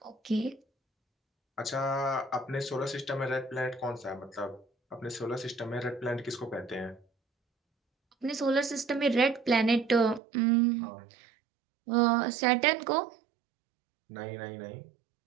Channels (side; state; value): left; drops out; at 10.2 s